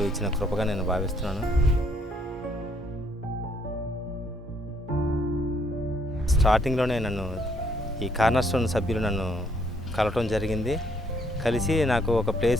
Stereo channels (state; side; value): normal; both; correlation 0.69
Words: ఇచ్చిన కృపగా నేను భావిస్తున్నాను. స్టార్టింగ్లోనే నన్ను ఈ కార్నర్స్టోన్ సభ్యులు నన్ను కలవటం జరిగింది. కలిసి నాకు ఒక